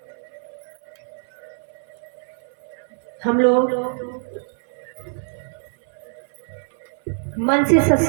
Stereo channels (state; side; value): silent; left; 61 dB below the other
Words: हम लोग मन से